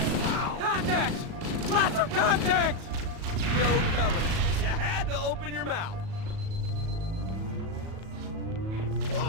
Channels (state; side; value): late; left; 37 ms